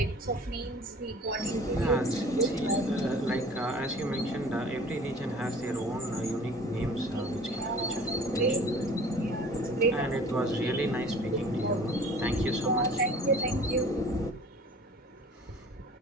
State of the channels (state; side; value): normal; both; correlation 0.46